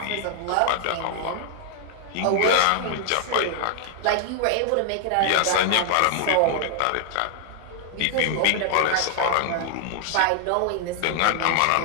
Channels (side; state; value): both; different; correlation 0.00